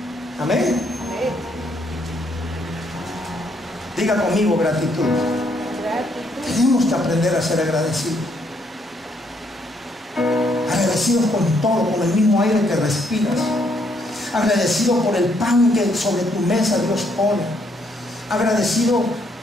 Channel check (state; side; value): normal; both; correlation 0.72